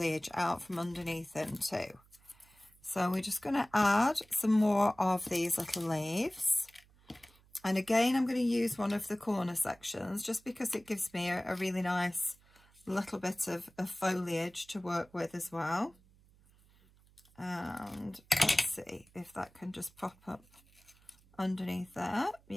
out from underneath them too. So we're just going to add some more of these little leaves. And again, I'm going to use one of the corner sections just because it gives me a really nice little bit of foliage to work with as well. And let's see if that can just pop up underneath there.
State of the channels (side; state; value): right; noise; hum, 29 dB below the sound